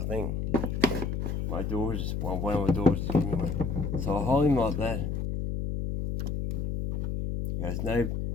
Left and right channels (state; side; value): noise; left; hum, 2 dB below the sound